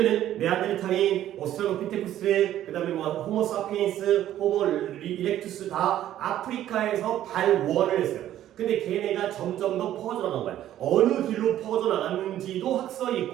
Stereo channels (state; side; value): quieter; left; 12.3 dB